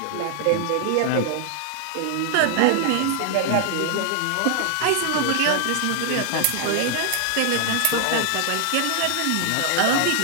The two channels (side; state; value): both; different; correlation 0.00